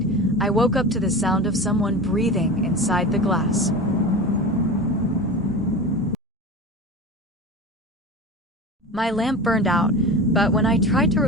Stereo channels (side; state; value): both; normal; correlation 0.30